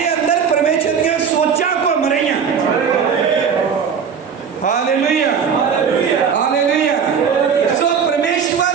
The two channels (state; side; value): quieter; left; 6.8 dB